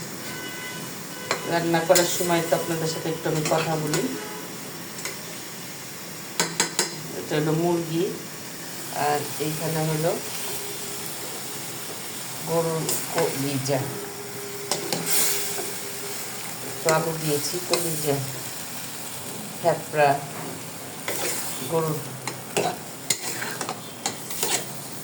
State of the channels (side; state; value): both; identical; correlation 1.00